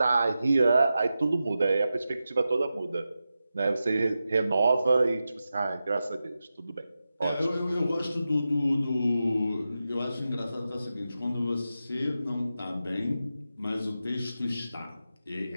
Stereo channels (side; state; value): both; inverted; correlation -0.91